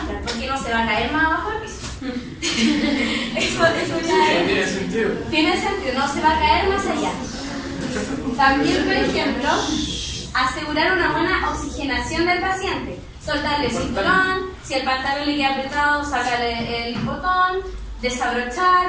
porque no se va a caer más abajo del piso. eso ya Tiene sentido. tiene sentido, no se va a caer más allá. También, por ejemplo, asegurar una buena oxigenación del paciente. Soltarle el cinturón, si el pantalón le queda apretado, sacarle el botón,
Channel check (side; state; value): both; identical; correlation 1.00